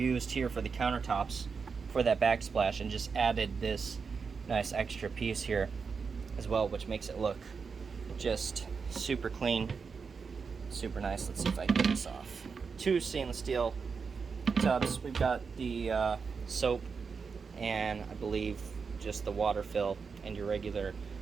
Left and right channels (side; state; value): left; quieter; 5.4 dB